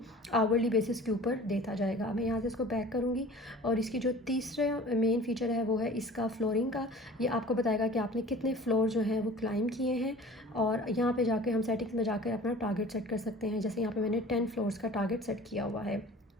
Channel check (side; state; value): both; normal; correlation 0.43